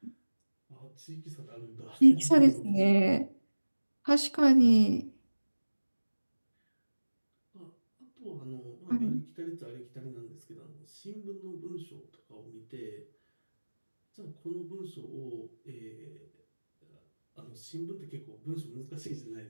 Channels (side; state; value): both; inverted; correlation -1.00